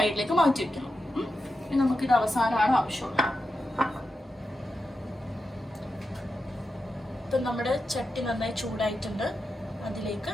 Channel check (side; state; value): both; normal; correlation 0.89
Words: മാറ്റി വെക്കണം. നമുക്കിത് അവസാനമാണ് ആവശ്യമുള്ളത്. ഇപ്പം നമ്മുടെ ചട്ടി നന്നായി ചൂടായിട്ടുണ്ട്. അതിലേക്ക്